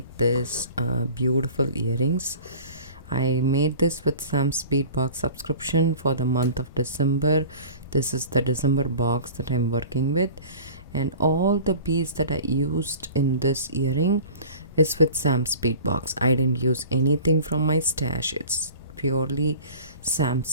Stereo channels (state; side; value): inverted; both; correlation -0.42